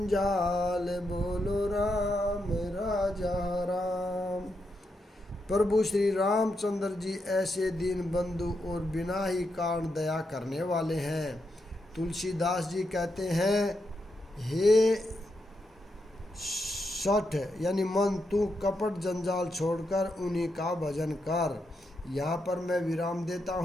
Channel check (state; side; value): normal; both; correlation 0.83